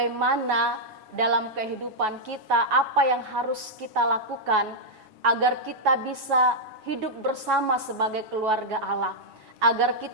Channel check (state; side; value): late; left; 7.3 ms